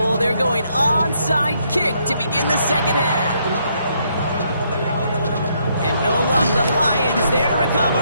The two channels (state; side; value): inverted; both; correlation -0.73